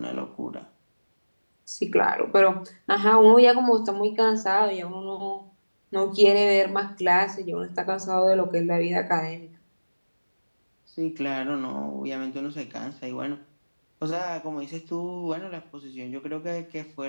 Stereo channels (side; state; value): both; inverted; correlation -1.00